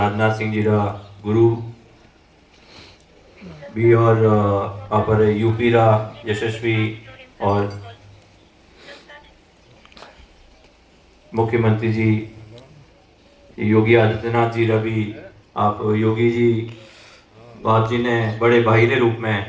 सिंह जी रा गुरु भी और अपर यूपी रा यशस्वी और मुख्यमंत्री जी योगी आदित्यनाथ जी रवि आप योगी जी बाप जी ने बड़े भाई के रूप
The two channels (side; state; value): both; identical; correlation 1.00